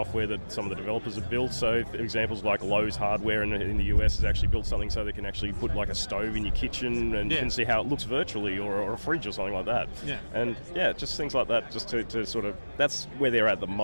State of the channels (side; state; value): both; inverted; correlation -1.00